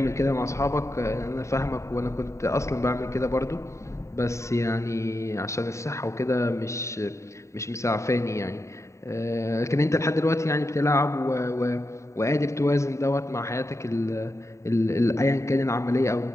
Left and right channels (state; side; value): late; right; 0.14 ms